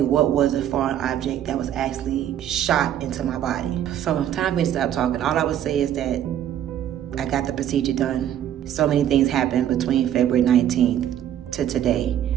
what was a foreign object that was actually shot into my body. So time for me to stop talking. All I would say is that I got the procedure done. So many things happened between February 19th to today.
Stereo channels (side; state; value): left; quieter; 10.7 dB